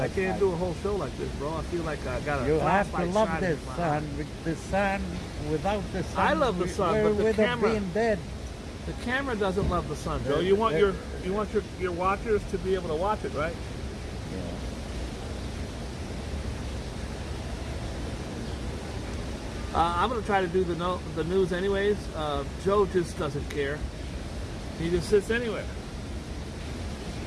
I can't side. do a whole show like this, bro. I feel like I got a You have to flashlight love shining this in my sun. eye. With the sun, without the sun, I love the sun, we but the would have camera- been dead. The camera doesn't love the sun, Joe. You want your watchers to be able to watch it, right? I'm gonna try to do the news anyways. Joe just doesn't care. He just sits anywhere.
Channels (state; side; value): identical; both; correlation 1.00